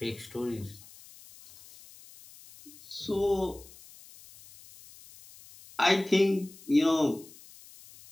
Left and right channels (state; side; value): noise; left; hiss, 21 dB below the sound